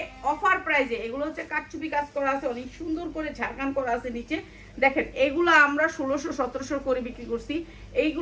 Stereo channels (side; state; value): both; identical; correlation 1.00